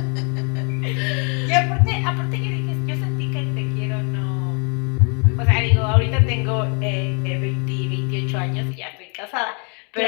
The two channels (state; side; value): quieter; right; 36.5 dB